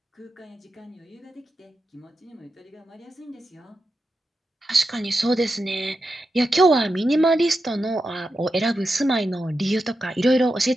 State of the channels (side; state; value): both; normal; correlation 0.89